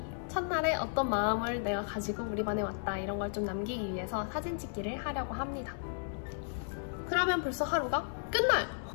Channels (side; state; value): right; silent; 55 dB below the other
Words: 첫날에 어떤 마음을 내가 가지고 우리 반에 왔다 이런 걸 좀 남기기 위해서 사진 찍기를 하려고 합니다. 그러면 벌써 하루가 끝나요.